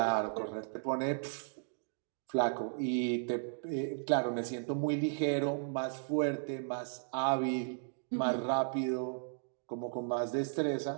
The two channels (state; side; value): silent; left; digital silence